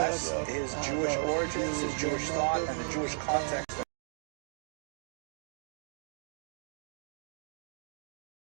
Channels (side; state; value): left; silent; digital silence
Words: his Jewish origins, his Jewish thought, and the Jewish context